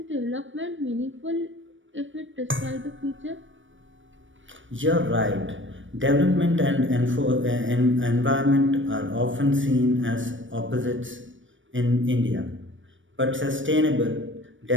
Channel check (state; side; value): late; left; 0.56 ms